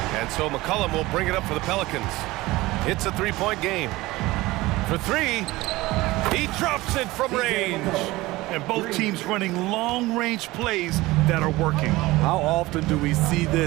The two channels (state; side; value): quieter; left; 19.4 dB